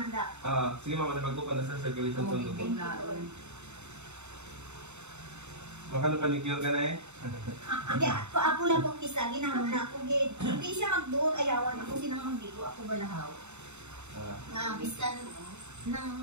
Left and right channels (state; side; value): late; left; 0.82 ms